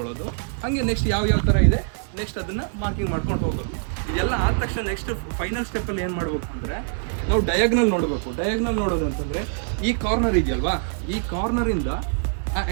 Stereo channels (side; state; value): left; silent; 56 dB below the other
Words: ಹಾಗೆ ನೆಕ್ಸ್ಟ್ ಯಾವ ಥರ ಇದೆ ನೆಕ್ಸ್ಟ್ ಅದನ್ನು ಮಾರ್ಕಿಂಗ್ ಮಾಡ್ಕೊಂಡು ಹೋಗೋದು. ಇದೆಲ್ಲ ಆದ ತಕ್ಷಣ ನೆಕ್ಸ್ಟ್ ಫೈನಲ್ ಸ್ಟೆಪ್ಪಲ್ಲಿ ಏನು ಮಾಡಬೇಕು ಅಂದರೆ, ನಾವು ಡಯಾಗ್ನಲ್ ನೋಡಬೇಕು. ಡಯಾಗ್ನಲ್ ನೋಡೋದು ಅಂತಂದರೆ ಈ ಕಾರ್ನರ್ ಇದೆಯಲ್ವಾ, ಈ ಕಾರ್ನರಿಂದ ಆ